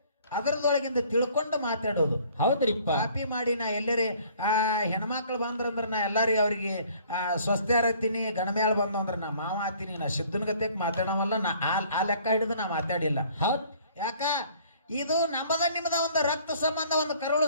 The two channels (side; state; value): both; inverted; correlation -0.56